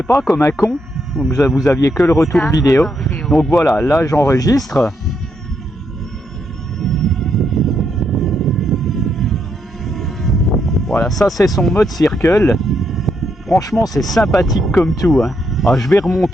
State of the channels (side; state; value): both; normal; correlation 0.78